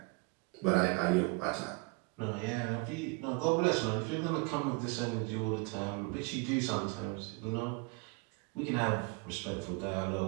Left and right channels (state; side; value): quieter; left; 29.5 dB